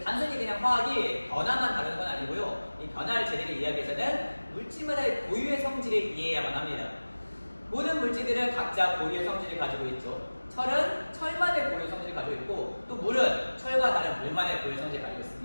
단순히 그냥 화학이 변화만 다루는 건 아니고요. 이 변화를 제대로 이해하기 위해서는 물질마다의 고유의 성질을 이해해야만 합니다. 모든 물질들은 각자 고유의 성질을 가지고 있죠. 철은 철만의 고유 성질을 가지고 있고, 또 물은 철과 다른 물만의 고유 성질을 가지고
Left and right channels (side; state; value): both; inverted; correlation -1.00